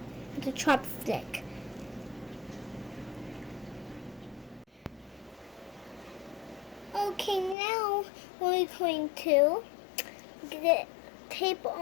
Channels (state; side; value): drops out; right; at 7.6 s